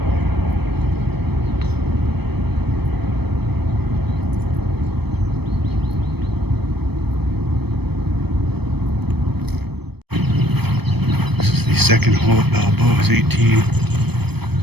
This is the second hole at Balboa's 18.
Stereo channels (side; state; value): left; late; 0.97 ms